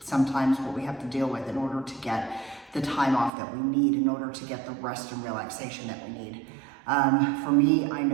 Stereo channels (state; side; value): drops out; left; at 3.3 s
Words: sometimes what we have to deal with in order to get the time off that we need, in order to get the rest and relaxation that we need. For me, I